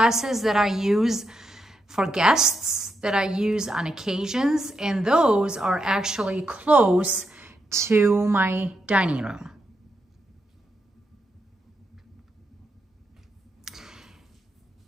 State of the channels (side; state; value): both; normal; correlation 0.83